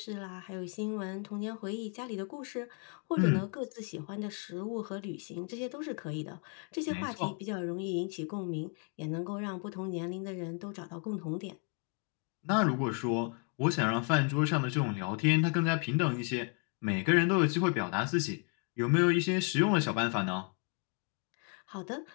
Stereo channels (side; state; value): right; quieter; 38.9 dB